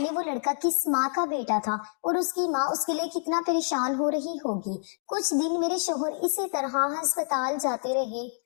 वो लड़का किस माँ का बेटा था और उसकी माँ उसके लिए कितना परेशान हो रही होगी। कुछ दिन मेरे शोहर इसी तरह अस्पताल जाते रहे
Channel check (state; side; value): silent; right; digital silence